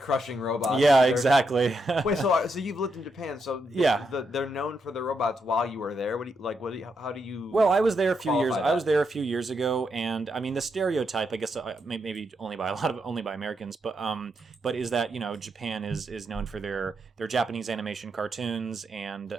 robots. Yeah, exactly. Wait, so you've lived in Japan, so yeah, they're known for the robots while you were there. How do you? Well, I was there a few years. that? I was there a few years ago, and I mean the stereotype, I guess, maybe only by Americans, but is that, you know, Japan is known for their Japanese animation cartoons and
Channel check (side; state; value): both; normal; correlation 0.81